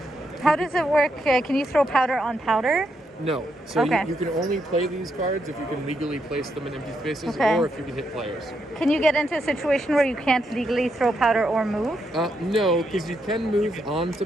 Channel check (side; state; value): both; normal; correlation 0.80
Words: How does it work? Can you throw powder on powder? No. So Okay. you can only play these cards if you can legally place them in empty spaces, Okay. or if you can hit players. Can you get into a situation where you can't legally throw powder or move? No, because you can move onto